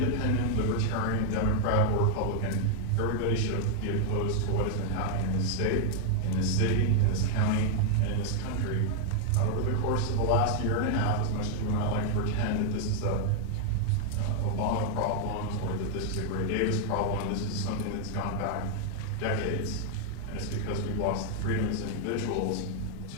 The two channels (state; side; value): different; both; correlation 0.00